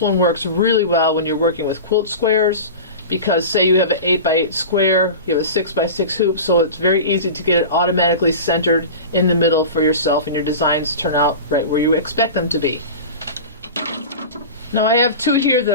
one works really well when you're working with quilt squares, because say you have an 8x8 square, you have a 6x6 hoop, so it's very easy to get it automatically centered in the middle for yourself, and your designs turn out right where you expect them to be. Now I have two here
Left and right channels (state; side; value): inverted; both; correlation -0.31